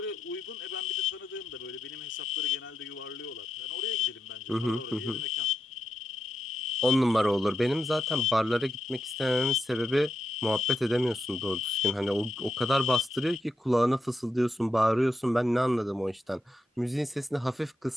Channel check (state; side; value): normal; both; correlation 0.85